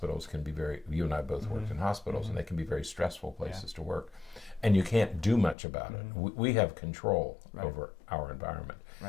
can be you and I both worked in hospitals, and they can be very stressful places to work, and you can't do much about it. We have control over our environment.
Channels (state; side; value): drops out; right; at 5.6 s